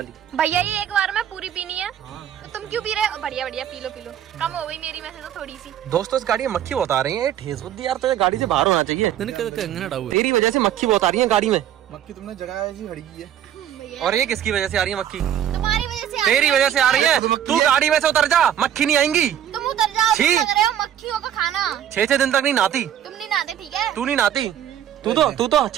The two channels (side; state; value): left; quieter; 10.5 dB